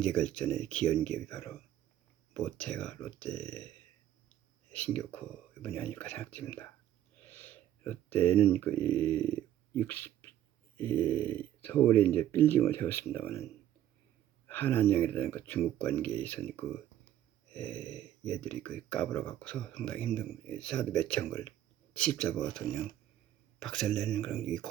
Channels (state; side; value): quieter; left; 12.0 dB